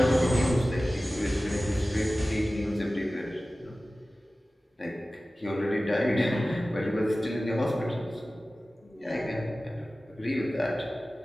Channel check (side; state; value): both; normal; correlation 0.96